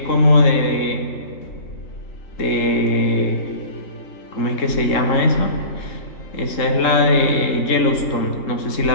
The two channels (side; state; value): right; late; 3.7 ms